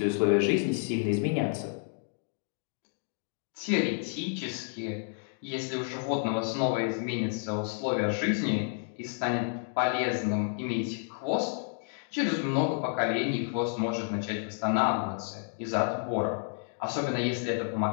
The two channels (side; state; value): right; silent; 57 dB below the other